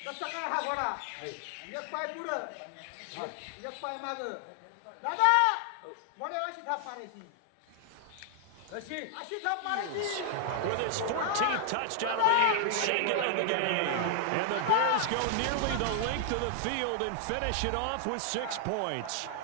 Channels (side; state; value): both; different; correlation 0.00